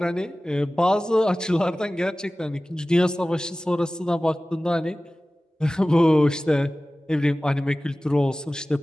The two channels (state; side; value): normal; both; correlation 0.97